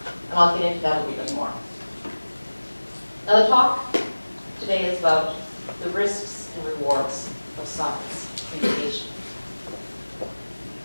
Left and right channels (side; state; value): both; inverted; correlation -1.00